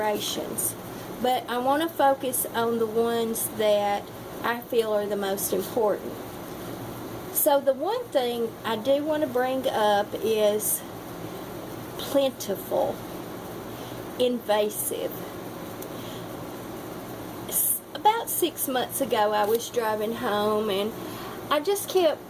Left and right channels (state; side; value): identical; both; correlation 1.00